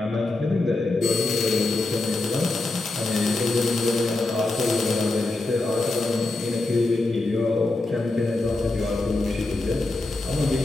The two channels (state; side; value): quieter; right; 3.0 dB